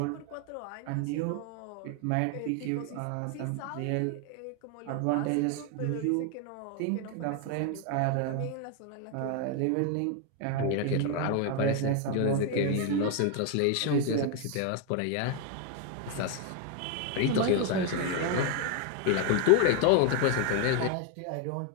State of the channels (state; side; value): different; both; correlation 0.01